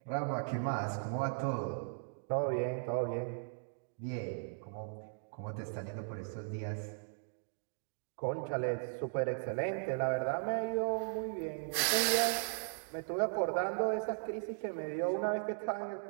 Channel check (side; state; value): left; silent; digital silence